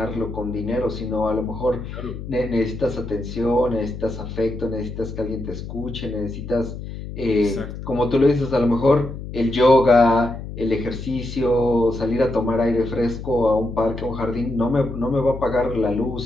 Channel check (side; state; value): left; noise; hum, 9 dB below the sound